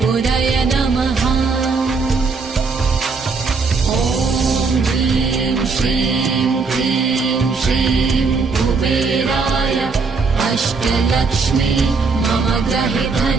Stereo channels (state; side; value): quieter; left; 4.5 dB